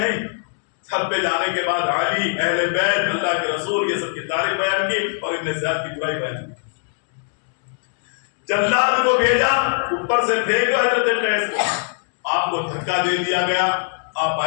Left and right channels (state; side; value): silent; right; digital silence